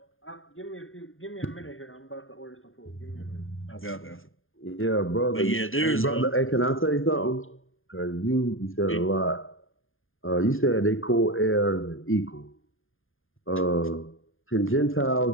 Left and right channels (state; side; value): late; right; 0.59 ms